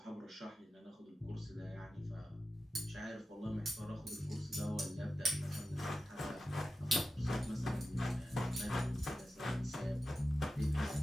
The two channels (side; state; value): both; normal; correlation 0.92